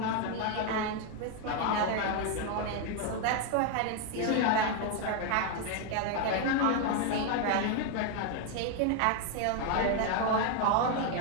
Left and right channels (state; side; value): different; both; correlation 0.01